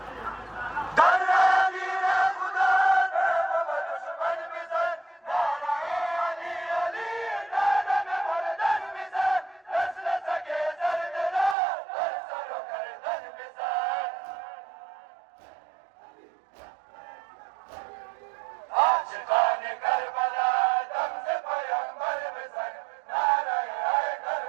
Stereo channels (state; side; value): drops out; left; at 11.6 s